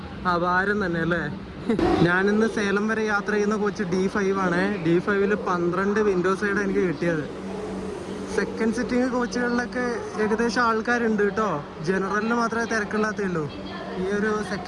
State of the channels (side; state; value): both; identical; correlation 1.00